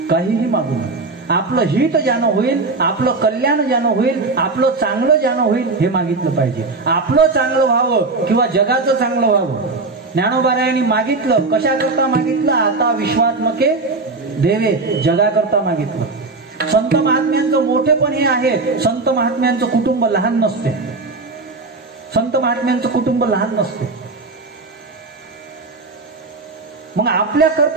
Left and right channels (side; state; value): left; quieter; 3.6 dB